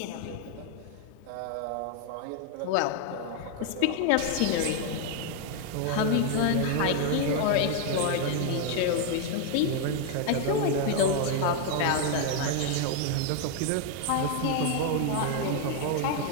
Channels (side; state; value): both; different; correlation 0.00